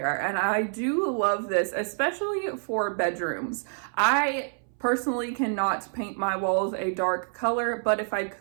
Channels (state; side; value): silent; left; 60 dB below the other